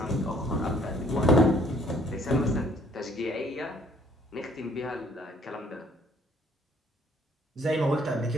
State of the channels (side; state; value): both; normal; correlation 0.61